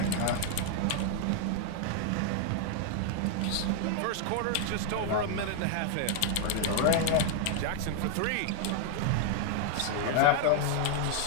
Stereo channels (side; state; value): both; different; correlation 0.00